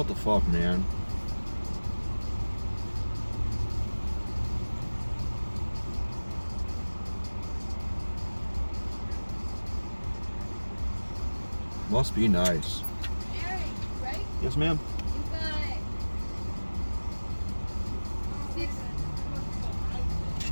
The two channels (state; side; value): inverted; both; correlation -1.00